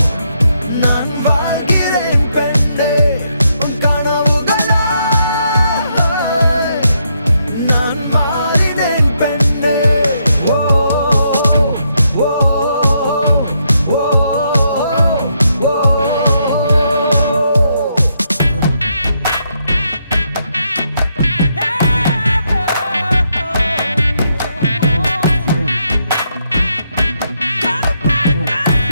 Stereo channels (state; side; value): inverted; both; correlation -0.77